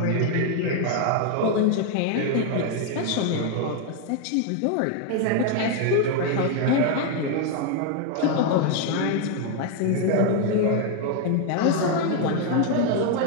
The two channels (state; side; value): different; both; correlation 0.00